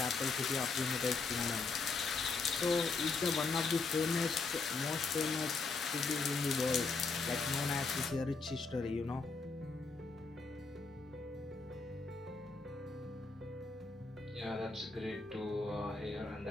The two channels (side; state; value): right; quieter; 4.2 dB